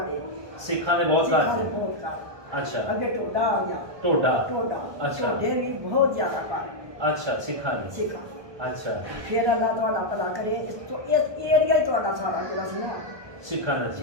ਸਿੱਖਾਂ ਦੇ ਬਹੁਤ ਘਰ ਸਿੱਖਾਂ ਦੇ ਸੀ। ਬਹੁਤ ਘਰ। ਅੱਛਾ ਅੱਗੇ ਟੋਡਾ ਆ ਗਿਆ। ਟੋਡਾ। ਟੋਡਾ ਅੱਛਾ। ਟੋਡੇ ਵੀ ਬਹੁਤ ਜ਼ਿਆਦਾ ਘਰ ਅੱਛਾ ਸਿੱਖਾਂ ਦੇ। ਸਿੱਖਾਂ। ਅੱਛਾ ਫਿਰ ਅੱਲਾ ਤੁਹਾਡਾ ਭਲਾ ਕਰੇ। ਇਸ ਏਰੀਆ ਹੀ ਤੁਹਾਡਾ ਸਾਰਾ ਜਿਹੜਾ ਸੀ ਨਾ ਸਿੱਖਾਂ ਦਾ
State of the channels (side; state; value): left; late; 1.2 ms